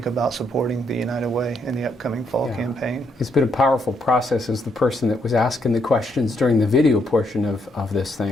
about supporting the United Way in the upcoming fall campaign. It's been a powerful process as the person that was asking the questions during the video portion of this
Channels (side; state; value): both; normal; correlation 0.75